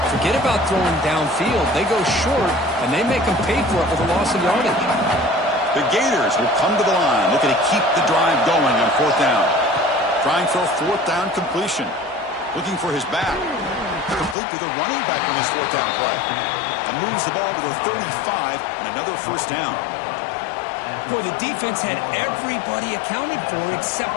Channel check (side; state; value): right; drops out; at 14.4 s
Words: Forget about throwing downfield. They go short, and they make them pay for it with a loss of yardage. The Gators will come to the line, looking to keep the drive going on fourth down. Trying for a fourth down completion. Looking for his back. Complete to the running back on his fourth down play. And moves the ball to the 35 and another first down. Boy, the defense had everybody accounted for